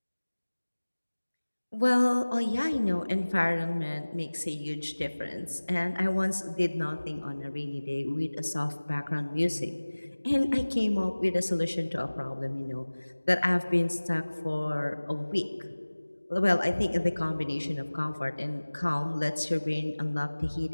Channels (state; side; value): inverted; both; correlation -1.00